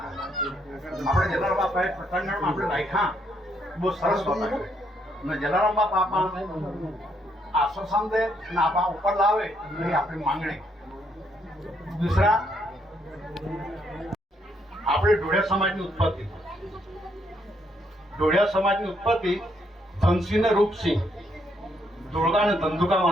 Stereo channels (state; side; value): normal; both; correlation 0.73